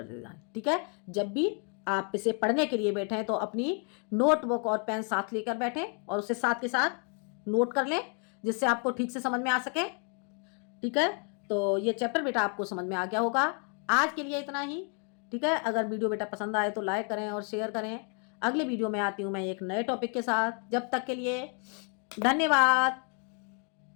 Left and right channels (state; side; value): quieter; right; 39.9 dB